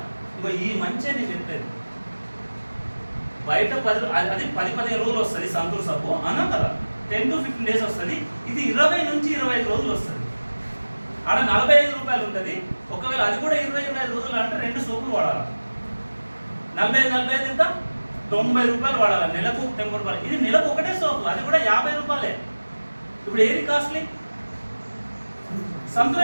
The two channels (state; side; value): inverted; both; correlation -1.00